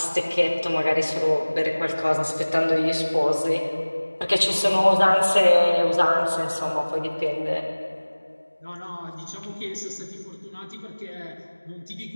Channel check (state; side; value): inverted; both; correlation -1.00